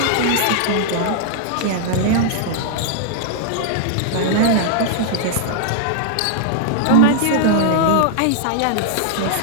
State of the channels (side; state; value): both; different; correlation -0.01